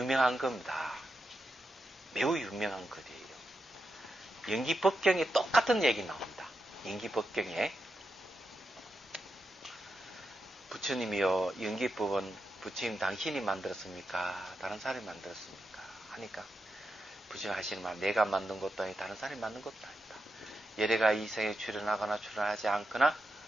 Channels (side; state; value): both; normal; correlation 0.87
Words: 겁니다. 매우 유명한 글이에요. 연기법경에 똑같은 얘기 나옵니다. 연기법경에 부처님이요 연기법은 부처님 당신이 만들었습니까? 다른 사람이 만들었습니까? 하니까 부처님 하시는 말 내가 만든 것도 아니고 다른 사람이 만든 것도 아니다. 여래가 이 생에 출현하거나 출현하지 않거나